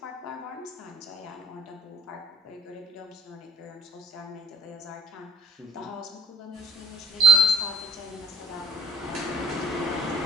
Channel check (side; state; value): both; normal; correlation 0.53